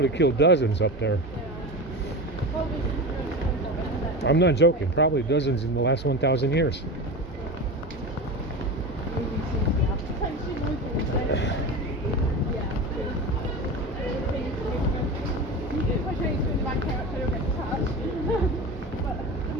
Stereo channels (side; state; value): both; normal; correlation 0.26